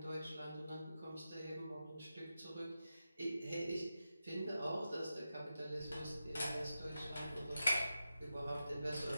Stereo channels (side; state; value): both; inverted; correlation -0.90